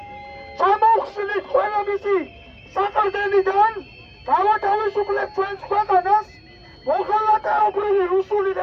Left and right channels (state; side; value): identical; both; correlation 1.00